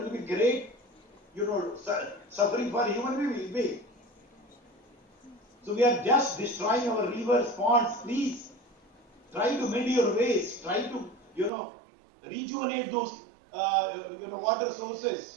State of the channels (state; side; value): drops out; left; at 11.5 s